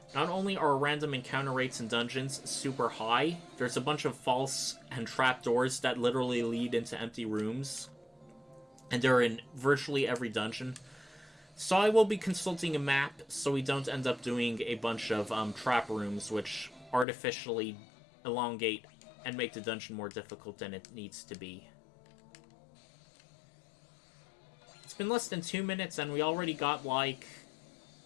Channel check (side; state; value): right; drops out; at 17.1 s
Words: Not only are random encounter rates in dungeons super high, there's a bunch of false and trapdoors that literally lead into empty rooms, and they're in virtually every dungeon. So I will be consulting a map so we don't end up doing a bunch of trap rooms which artificially elongate and make the dungeon more difficult than it needs to be. It's been less than 2 minutes and we already got like